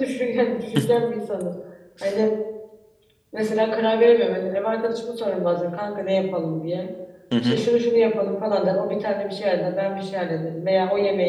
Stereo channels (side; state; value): both; identical; correlation 1.00